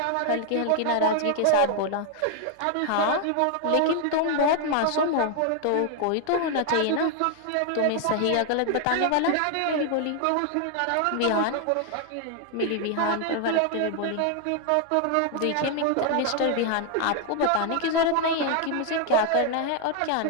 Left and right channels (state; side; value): different; both; correlation 0.00